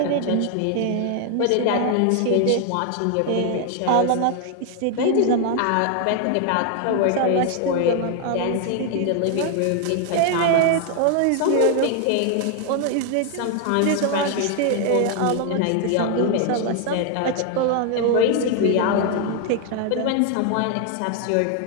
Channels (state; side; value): different; both; correlation 0.00